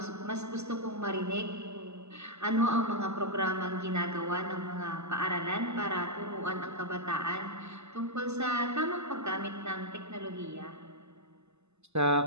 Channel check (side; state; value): left; late; 0.81 ms